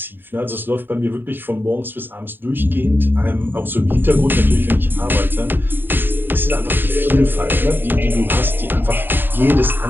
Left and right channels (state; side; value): late; left; 0.095 ms